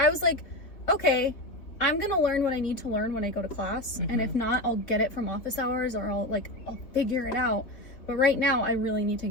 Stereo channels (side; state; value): right; late; 3.3 ms